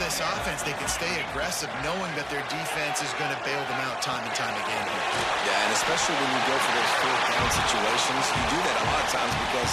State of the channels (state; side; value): identical; both; correlation 1.00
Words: this offense, they can stay aggressive knowing that their defense is going to bail them out time and time again here. Yeah, and especially when you go for those 4th down situations, you do that a lot of times because